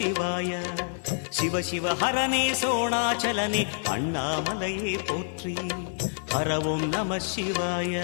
சிவ சிவ ஹரனே சோணாச்சலனே அண்ணாமலையே போற்றி. ஹரவும் நம சிவாய.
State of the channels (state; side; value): silent; right; digital silence